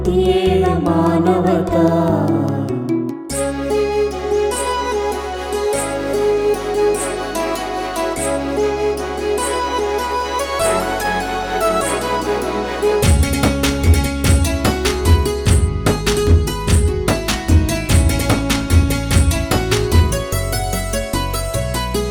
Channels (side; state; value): both; identical; correlation 1.00